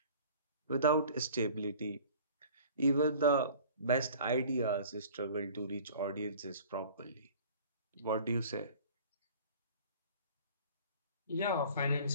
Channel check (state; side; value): inverted; both; correlation -0.46